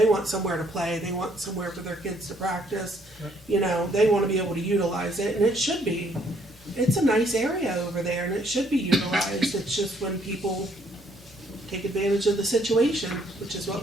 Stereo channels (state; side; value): normal; both; correlation 0.66